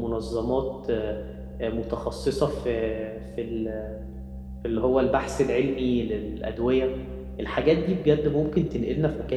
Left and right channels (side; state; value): both; identical; correlation 1.00